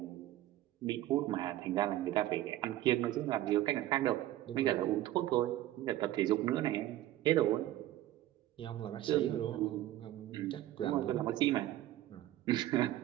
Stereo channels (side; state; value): left; quieter; 14.4 dB